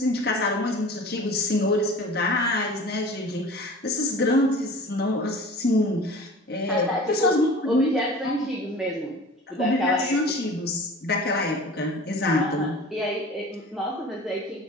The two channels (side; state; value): both; normal; correlation 0.40